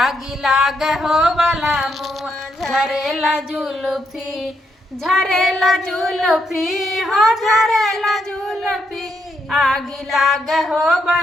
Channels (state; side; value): normal; both; correlation 0.78